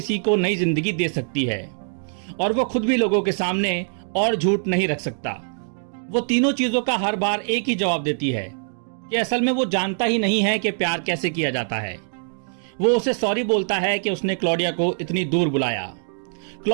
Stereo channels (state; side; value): silent; left; digital silence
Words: को नई जिंदगी दे सकती है, और वो खुद भी लोगों के सामने और झूठ नहीं रख सकता। वो तीनों चीजों का हर बार एक ही जवाब देती है कि असल में वो जानता ही नहीं है कि प्यार कैसे किया जाता है। वो उसे सॉरी बोलता है कि उसने क्लॉडिया को इतनी दूर बुलाया।